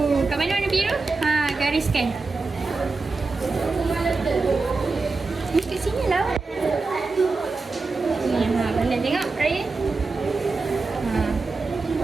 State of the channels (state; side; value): quieter; left; 3.9 dB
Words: Kat mana warna biru? Ha, gariskan. Ni kat sini lah. Ni, ha, pandai tengok Raya. Ha.